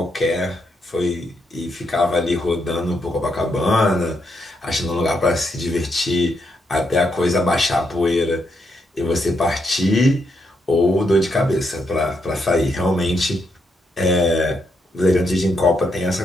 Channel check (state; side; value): normal; both; correlation 0.79